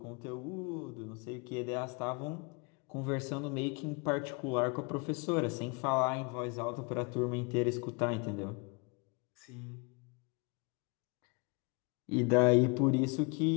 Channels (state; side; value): quieter; right; 31.6 dB